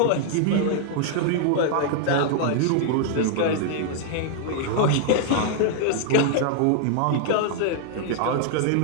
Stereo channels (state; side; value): different; both; correlation 0.00